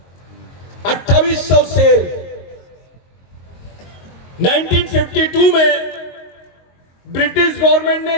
2800 शेर। 1952 में ब्रिटिश गवर्नमेंट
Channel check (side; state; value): right; late; 22 ms